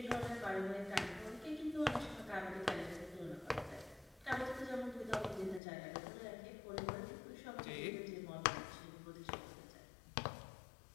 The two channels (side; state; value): right; drops out; at 5.6 s